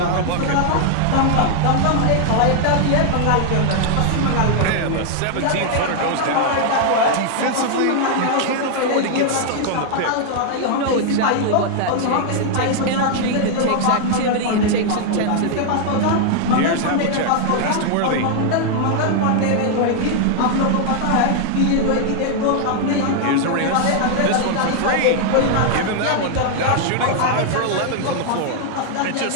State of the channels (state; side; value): different; both; correlation 0.00